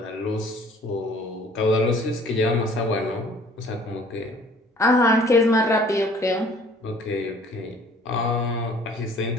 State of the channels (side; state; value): both; normal; correlation 0.54